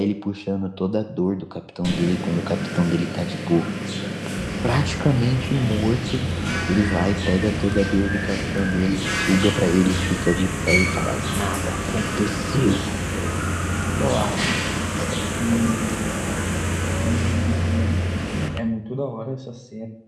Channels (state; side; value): identical; both; correlation 1.00